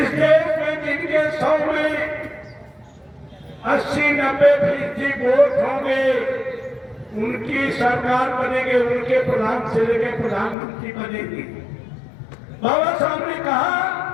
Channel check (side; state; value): right; drops out; at 10.6 s